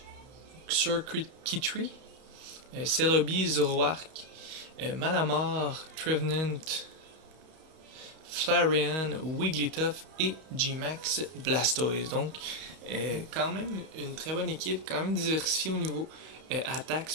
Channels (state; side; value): late; left; 32 ms